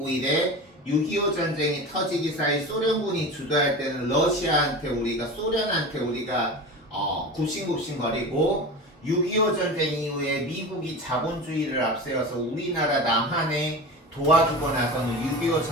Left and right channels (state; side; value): normal; both; correlation 0.30